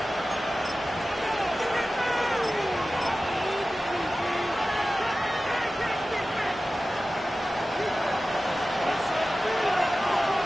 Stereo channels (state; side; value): normal; both; correlation 0.95